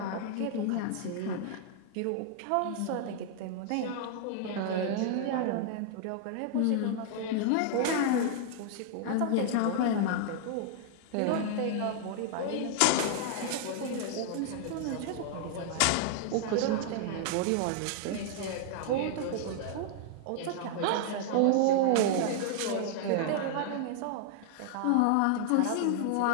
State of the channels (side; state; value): both; different; correlation -0.01